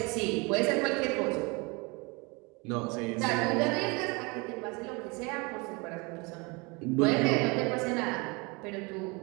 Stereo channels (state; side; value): quieter; left; 27.9 dB